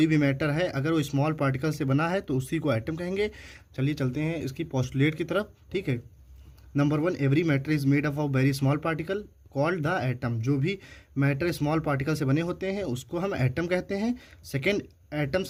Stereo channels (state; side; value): identical; both; correlation 1.00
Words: भी मैटर है अगर वो स्मॉल पार्टिकल से बना है तो उसी को एटम कहेंगे। चलिए चलते हैं इसकी पोस्टुलेट की तरफ। ठीक है, number 1, every matter is made up of very small particle called the atom. जो भी मैटर स्मॉल पार्टिकल से बने होते हैं उसको हम एटम कहते हैं। Second,